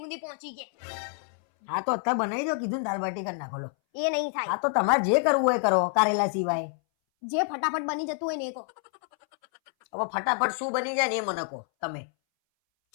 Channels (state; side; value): silent; right; 59 dB below the other